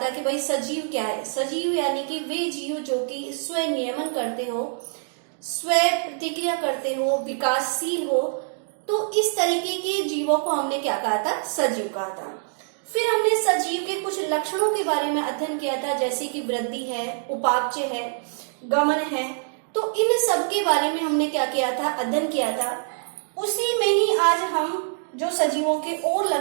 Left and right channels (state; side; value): silent; left; digital silence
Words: कि भाई सजीव क्या है। सजीव यानी कि वे जीव जो कि स्व नियमन करते हो, स्व प्रतिक्रिया करते हो, विकासशील हो। तो इस तरीके के जीवों को हमने क्या कहा था, सजीव कहा था। फिर हमने सजीव के कुछ लक्षणों के बारे में अध्ययन किया था, जैसे कि वृद्धि है, उपापचय है, गमन है। तो इन सब के बारे में हमने क्या किया था, अध्ययन किया था। उसी में ही आज हम जो सजीवों के और